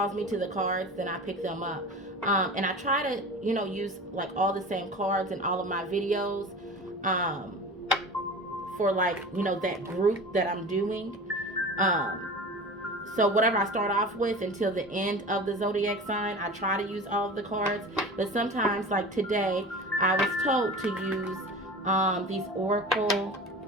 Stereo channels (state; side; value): normal; both; correlation 0.35